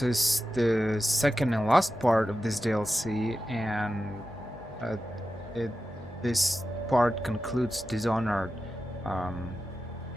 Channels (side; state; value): both; normal; correlation 0.92